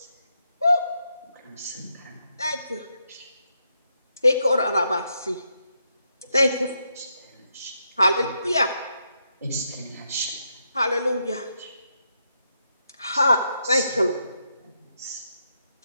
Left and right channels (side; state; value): both; inverted; correlation -0.81